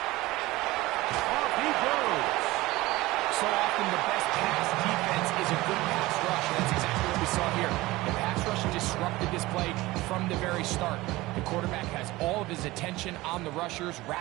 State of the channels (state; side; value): quieter; left; 19.3 dB